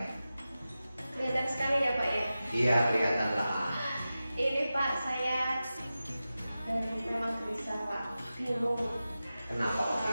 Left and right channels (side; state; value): both; inverted; correlation -0.94